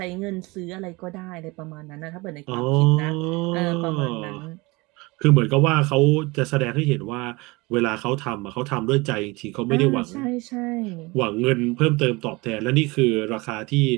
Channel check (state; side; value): quieter; left; 24.3 dB